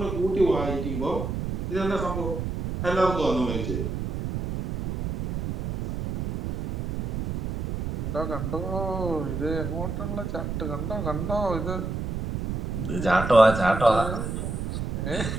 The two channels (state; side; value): noise; right; rumble, 3 dB below the sound